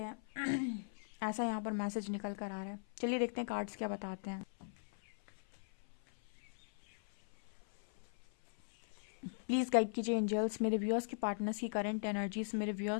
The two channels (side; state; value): right; silent; 51 dB below the other